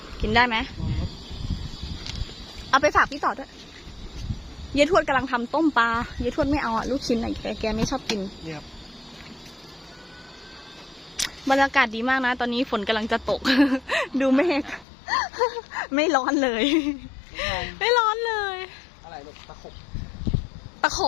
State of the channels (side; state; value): right; drops out; at 14.9 s